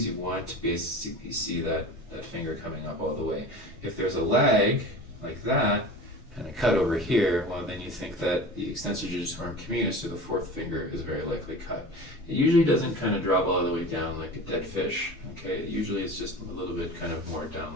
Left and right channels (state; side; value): normal; both; correlation 0.35